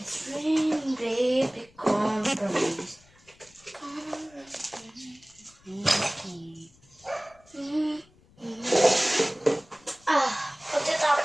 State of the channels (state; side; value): noise; left; rumble, 29 dB below the sound